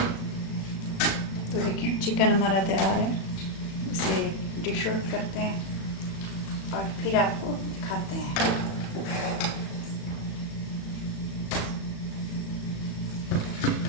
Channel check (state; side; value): late; right; 36 ms